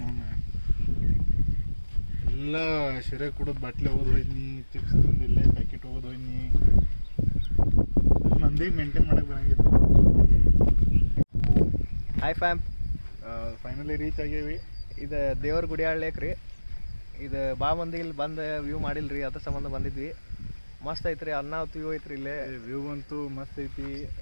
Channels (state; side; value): inverted; both; correlation -1.00